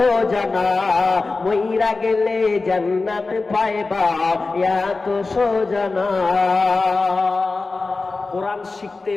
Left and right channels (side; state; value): right; quieter; 3.7 dB